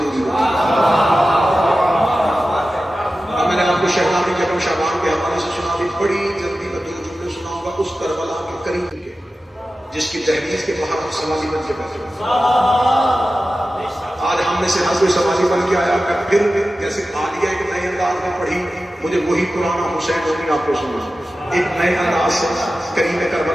ہوتا میں نے آپ کو شہزادی جگم شعبان کے حوالے سے سنا دی بڑی جلدی میں 2 جملے سناؤں گا اس کربلا کے قریب کے جس کی تحریر کے باہر ہم سوالی بن کے بیٹھے آج ہم نے سے ہر کوئی سوالی بن کے آیا میں پھر جیسے عالیہ ایک نئے انداز میں پڑھی مجھے وہی پرانا حسین ہوگی آپ کو سنا ایک نئے انداز سے کریم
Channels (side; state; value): both; normal; correlation 0.94